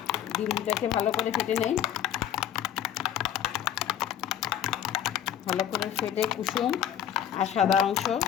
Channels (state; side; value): quieter; right; 10.1 dB